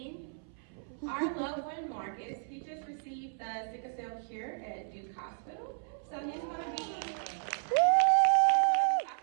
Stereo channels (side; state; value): left; silent; 56 dB below the other